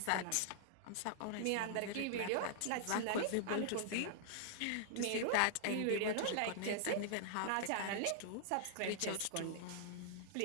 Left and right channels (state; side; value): different; both; correlation -0.01